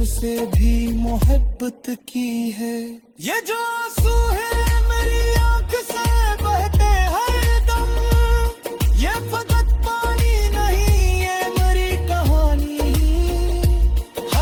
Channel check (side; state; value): both; identical; correlation 1.00